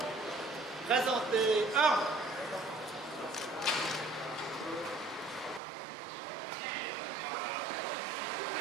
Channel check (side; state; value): left; drops out; at 5.6 s